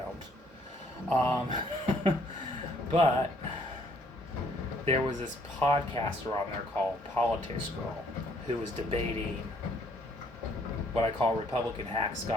But there was this podcaster on there called Politics Girl who was debating what I call Republican hack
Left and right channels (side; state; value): both; normal; correlation 0.64